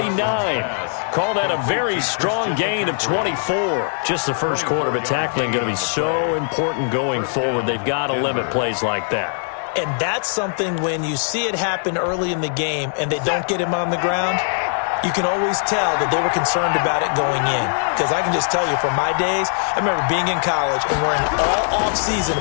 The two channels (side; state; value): right; silent; digital silence